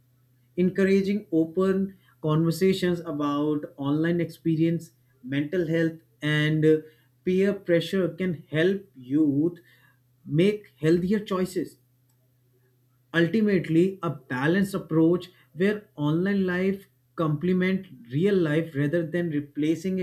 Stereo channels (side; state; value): both; identical; correlation 1.00